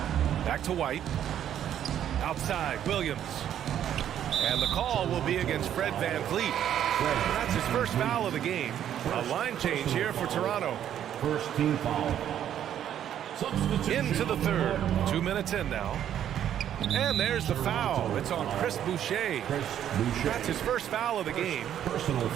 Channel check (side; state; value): left; quieter; 10.3 dB